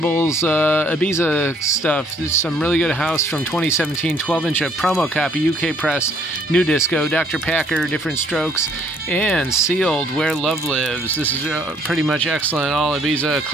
Ibiza stuff. There's some really good house from 2017, 12-inch promo copy, UK press, new disco, Dr. Packer, Different Strokes, and Sealed, Where Love Lives. This is pretty much excellent. All Ibiza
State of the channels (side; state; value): both; normal; correlation 0.63